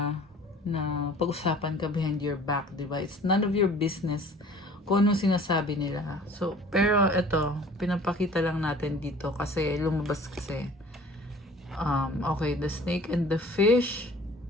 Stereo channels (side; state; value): both; normal; correlation 0.48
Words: na pag-usapan ka behind your back, di ba? It's none of your business kung anong sinasabi nila. So, pero ito, pinapakita lang natin dito kasi lumabas kasi. Okay, the snake and the fish.